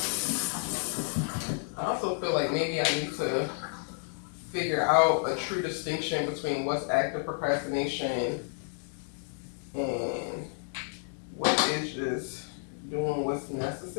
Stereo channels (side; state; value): right; silent; 57 dB below the other